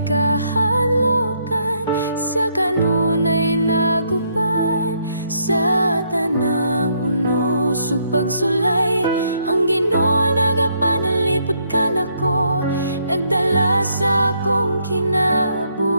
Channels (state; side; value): inverted; both; correlation -0.73